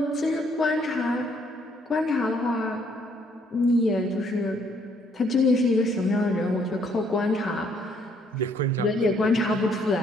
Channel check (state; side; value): normal; both; correlation 0.67